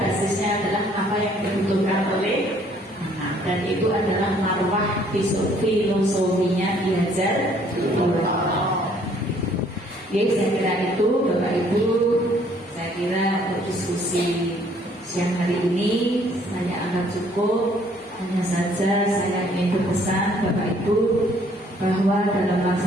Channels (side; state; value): both; normal; correlation 0.62